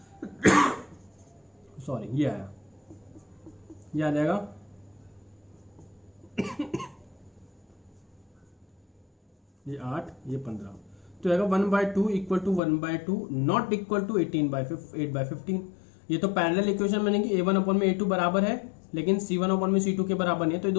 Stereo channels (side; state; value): right; drops out; at 12.6 s